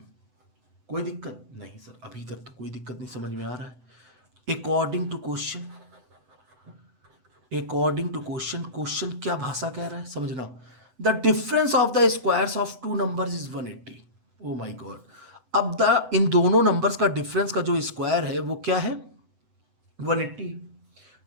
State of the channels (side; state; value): left; late; 7.9 ms